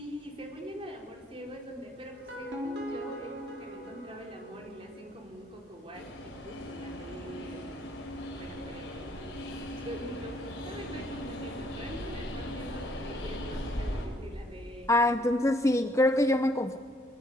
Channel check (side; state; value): both; normal; correlation 0.66